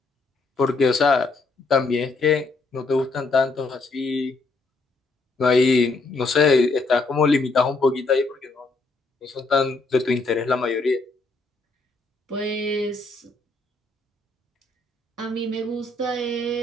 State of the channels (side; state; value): right; quieter; 3.4 dB